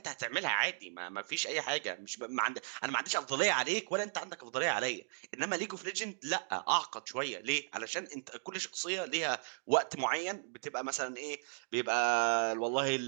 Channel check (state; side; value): silent; left; digital silence